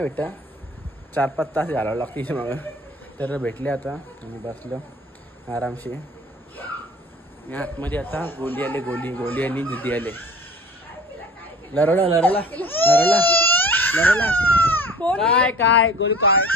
भेटतं. 4-5 तास घालावं लागतं तिच्या मागं. तर भेटले आता आणि बसलो आरामशी. आतमध्ये आता गोली आली निधी आले. लरवला काय गोली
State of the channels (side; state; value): both; normal; correlation 0.44